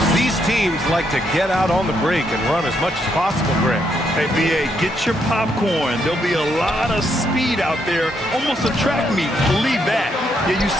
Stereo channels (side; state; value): both; normal; correlation 0.76